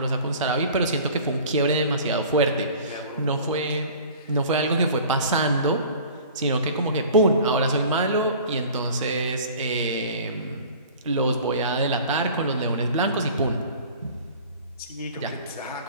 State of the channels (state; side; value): inverted; both; correlation -0.44